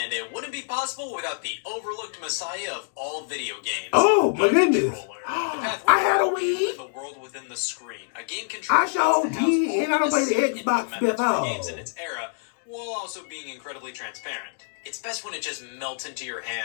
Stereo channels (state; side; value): silent; right; digital silence